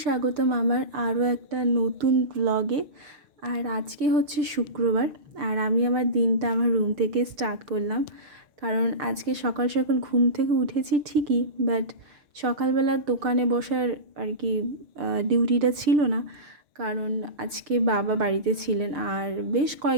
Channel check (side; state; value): left; late; 6.7 ms